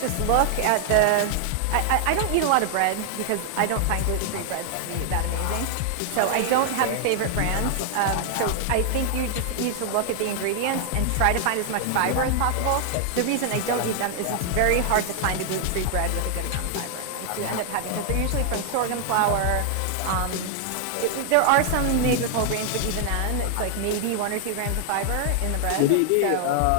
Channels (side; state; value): both; different; correlation 0.00